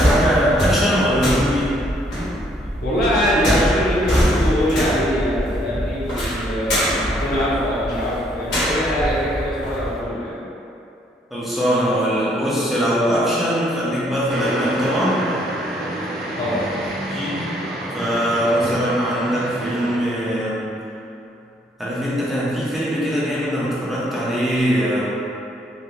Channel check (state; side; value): normal; both; correlation 0.67